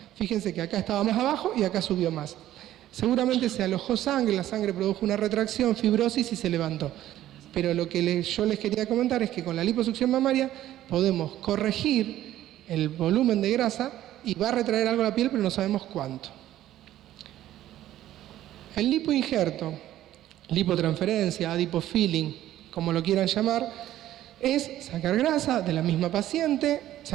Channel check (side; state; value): left; quieter; 13.3 dB